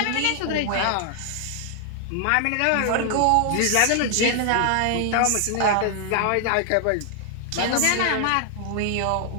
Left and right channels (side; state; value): both; different; correlation 0.00